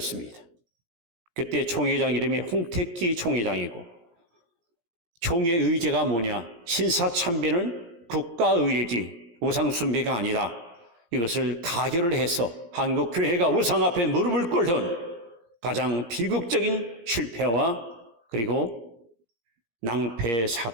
그때 총회장 이름이 홍택기 총회장이고, 총회 의제가 뭐냐? 신사참배는 국가의례지 우상숭배가 아니다. 이것을 가결을 해서 한국교회가 우상 앞에 무릎을 꿇은 가장 비극적인 실패와 그리고 낭패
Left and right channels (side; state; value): left; late; 17 ms